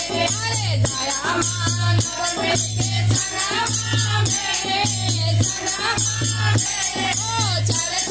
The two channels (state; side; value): noise; left; hum, 18 dB below the sound